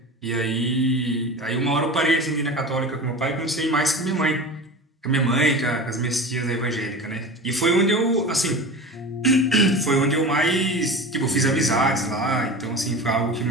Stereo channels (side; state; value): both; normal; correlation 0.32